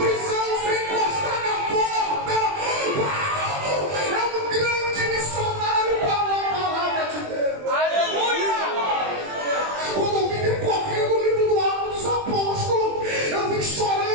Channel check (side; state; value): left; late; 20 ms